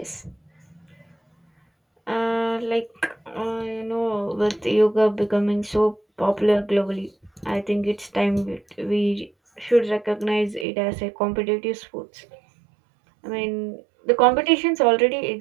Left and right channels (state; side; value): drops out; left; at 10.7 s